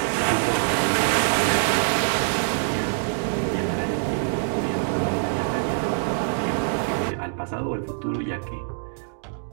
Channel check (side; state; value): left; silent; digital silence